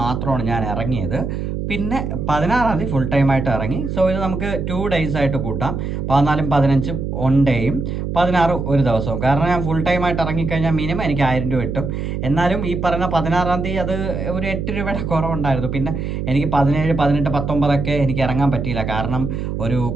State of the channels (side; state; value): right; noise; hum, 3 dB below the sound